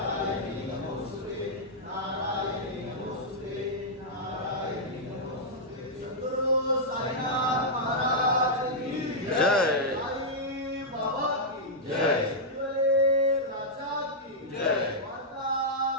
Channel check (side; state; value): both; normal; correlation -0.08